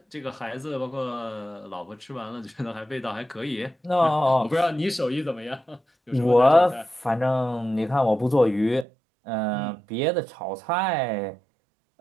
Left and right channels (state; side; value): drops out; left; at 8.8 s